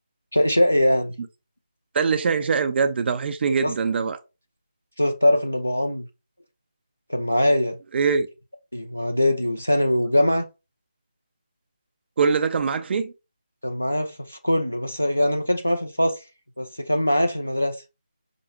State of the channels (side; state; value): both; inverted; correlation -0.88